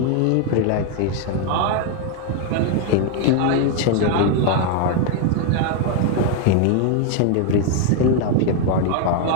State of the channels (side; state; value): both; different; correlation 0.00